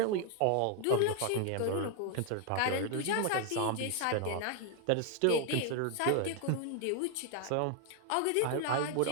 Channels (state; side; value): different; both; correlation 0.00